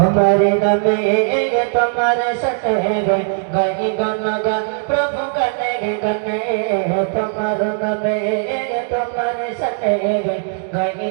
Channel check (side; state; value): left; silent; digital silence